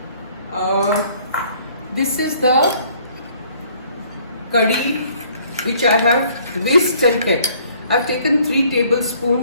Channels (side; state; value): both; inverted; correlation -0.60